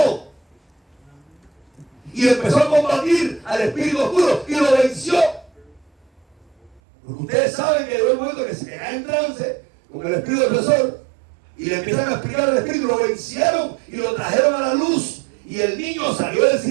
Y y empezó a combatir al espíritu oscuro y lo venció. Porque ustedes saben que llegó el momento que se cae en trance con el espíritu opresor y le empiezan a explicar al espíritu, lo vencieron y lo trajeron a la luz y el niño salió del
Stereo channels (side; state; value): left; drops out; at 6.8 s